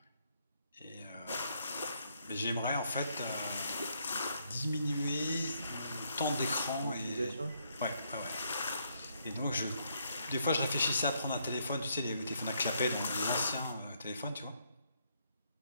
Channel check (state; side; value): inverted; both; correlation -0.73